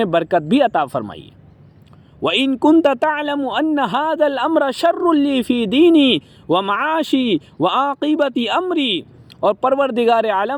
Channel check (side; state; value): both; identical; correlation 1.00